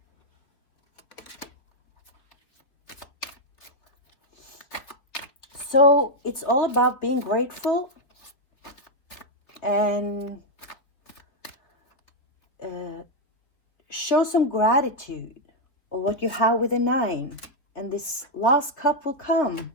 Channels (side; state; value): right; late; 3.6 ms